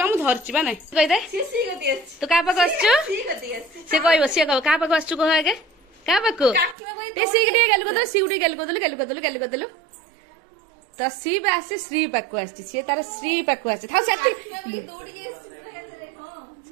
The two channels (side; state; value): left; drops out; at 6.8 s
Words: मु धरची बा नहीं कहि दे तो का पाक आछू से कहबो से कह का पाक आछू कह आगे का पाक टे सीगटी गेल को दे सीगटी गेल को दे तो शिव आसी श्री पाक आसी सी तार श्री पाक आसी था सेति